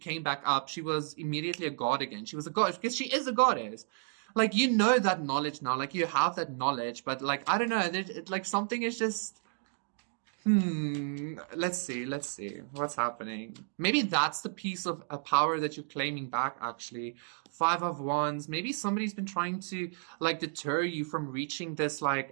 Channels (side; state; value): left; silent; digital silence